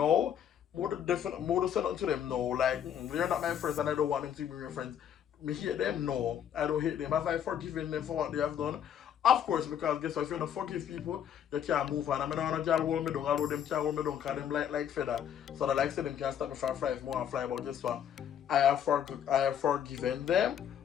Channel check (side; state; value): right; quieter; 9.2 dB